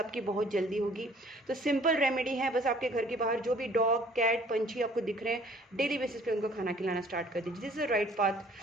बहुत जल्दी होगी। तो सिंपल रेमेडी है, बस आपके घर के बाहर जो भी डॉग, कैट, पंछी आपको दिख रहे हैं, डेली बेसिस पे उनको खाना खिलाना स्टार्ट कर दीजिए। दिस इज राइट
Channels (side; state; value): both; normal; correlation 0.55